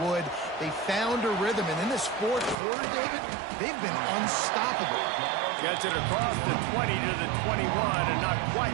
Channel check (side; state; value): left; drops out; at 2.6 s